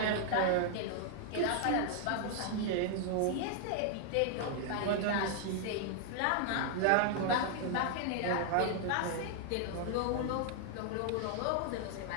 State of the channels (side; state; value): both; different; correlation 0.00